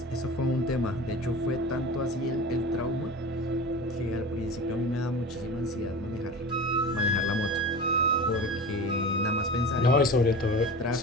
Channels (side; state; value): both; normal; correlation 0.33